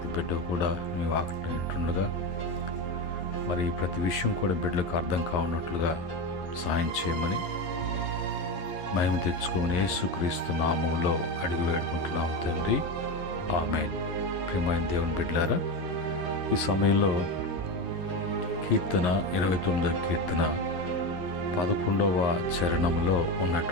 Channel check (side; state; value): right; late; 11 ms